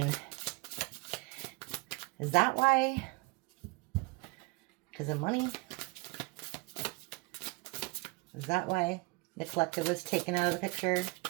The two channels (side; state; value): left; quieter; 25.8 dB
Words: is that why? Because of money? Is that why the collective was taken out of the picture?